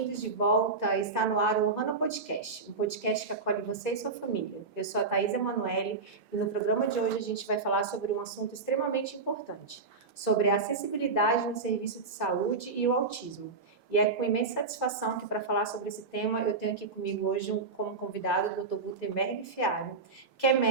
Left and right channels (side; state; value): left; quieter; 4.3 dB